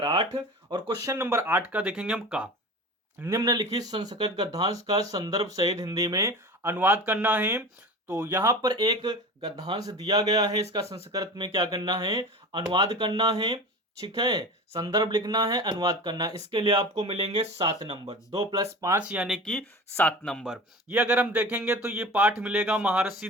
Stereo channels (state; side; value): normal; both; correlation 0.33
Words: 8, और क्वेश्चन नंबर 8 का देखेंगे हम का। निम्नलिखित संस्कृत गद्यांश का संदर्भ सहित हिंदी में अनुवाद करना है। तो यहां पर एक गद्यांश दिया गया है, इसका संस्कृत में क्या करना है, अनुवाद करना है, ठीक है। संदर्भ लिखना है, अनुवाद करना है। इसके लिए आपको मिलेंगे 7 नंबर, 2 + 5 यानी कि 7 नंबर। ये अगर हम देखेंगे तो ये पाठ मिलेगा महर्षि